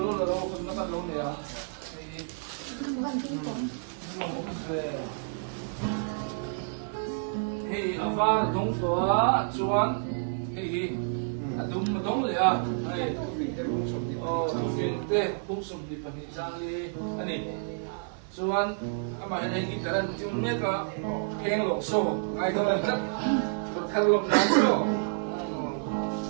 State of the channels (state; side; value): silent; left; 58 dB below the other